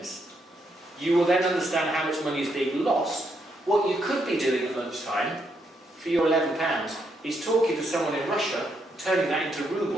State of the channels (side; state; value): both; normal; correlation 0.77